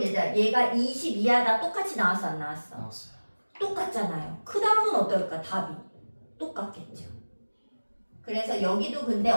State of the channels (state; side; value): inverted; both; correlation -1.00